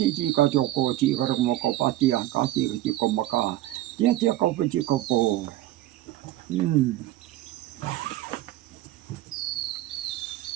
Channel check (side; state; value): left; quieter; 15.3 dB